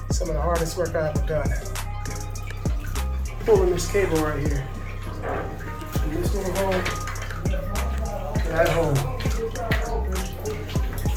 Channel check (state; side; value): identical; both; correlation 1.00